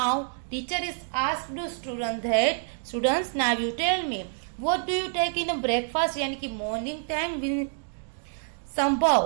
teacher is asked to students that, students, now you tell me, what do you take in a breakfast? यानी कि morning time with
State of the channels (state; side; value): silent; left; 60 dB below the other